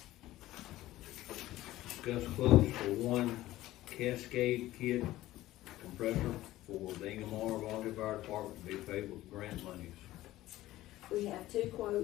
Discuss quotes for one Cascade kit compressor for the Inglemoor Volunteer Fire Department to be paid with grant monies. We have two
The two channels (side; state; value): right; quieter; 15.9 dB